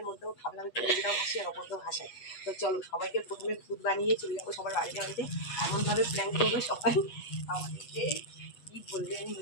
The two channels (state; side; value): late; right; 8.2 ms